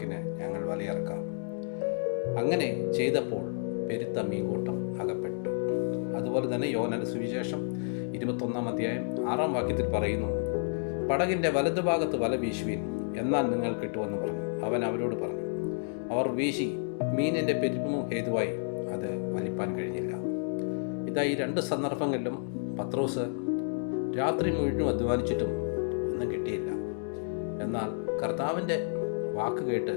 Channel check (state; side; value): silent; right; digital silence